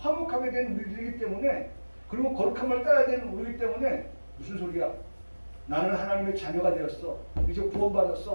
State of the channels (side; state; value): both; inverted; correlation -1.00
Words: 된 우리들이기 때문에, 그리고 거룩함을 따라야 되는 우리이기 때문에, 무슨 소리야? 나는 하나님의 자녀가 되었어. 이제